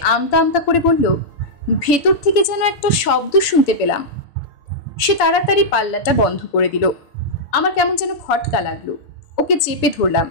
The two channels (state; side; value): late; right; 6.9 ms